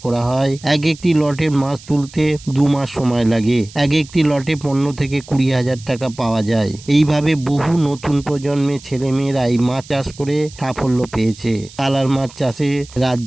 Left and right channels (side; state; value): right; noise; hiss, 20 dB below the sound